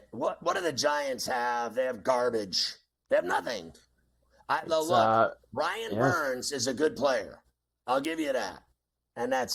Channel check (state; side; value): identical; both; correlation 1.00